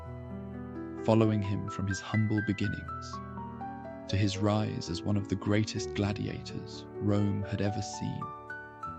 following him from his humble beginnings to his rise as one of the greatest gladiators Rome had ever seen.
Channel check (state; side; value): identical; both; correlation 1.00